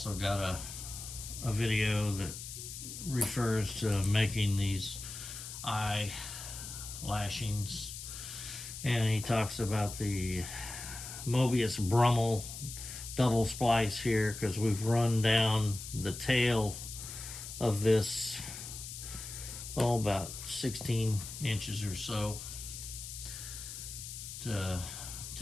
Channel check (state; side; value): noise; left; hiss, 9 dB below the sound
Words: got a video that refers to making these eye lashings. And he talks about the Mobius Brummel double splice here because we've run down the tail of this about 16 inches or so to